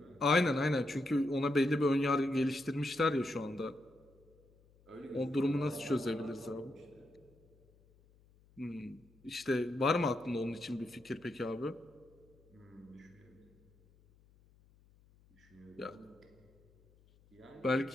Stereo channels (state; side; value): noise; left; hum, 29 dB below the sound